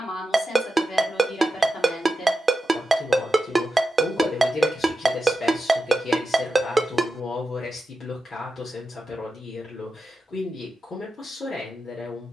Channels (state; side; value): normal; both; correlation 0.90